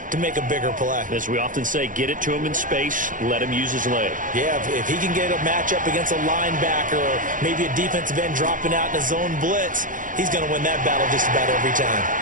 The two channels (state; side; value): late; left; 0.38 ms